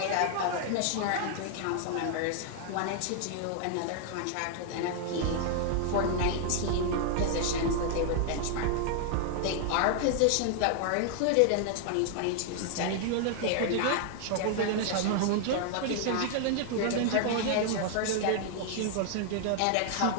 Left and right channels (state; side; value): different; both; correlation 0.00